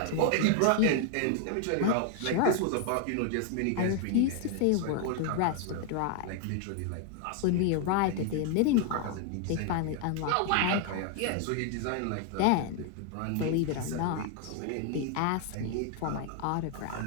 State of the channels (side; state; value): both; different; correlation 0.00